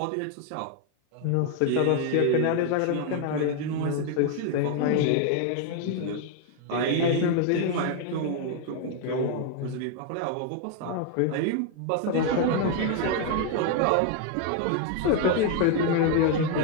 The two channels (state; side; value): different; both; correlation 0.01